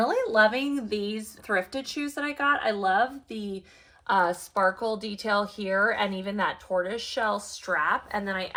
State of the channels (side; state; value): both; identical; correlation 1.00